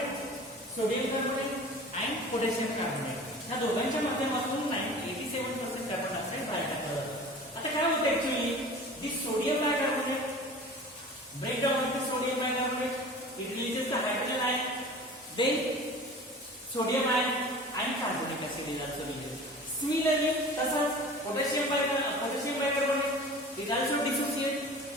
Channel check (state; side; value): normal; both; correlation 0.40